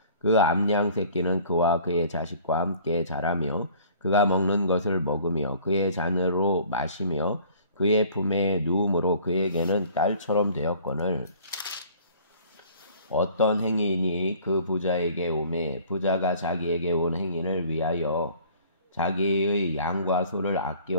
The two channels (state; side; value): inverted; both; correlation -0.51